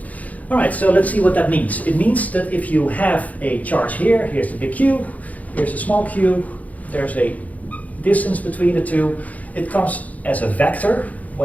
all right, so let's see what that means. It means that if you have a charge here, here's the big Q, here's the small q, there's a distance between the two. It comes as a vector.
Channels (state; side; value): late; right; 0.074 ms